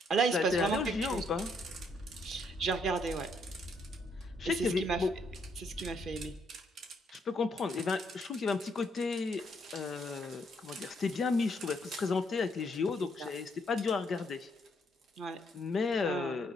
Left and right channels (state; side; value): normal; both; correlation 0.72